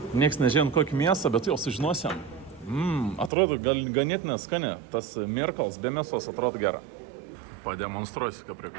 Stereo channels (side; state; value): left; drops out; at 3.3 s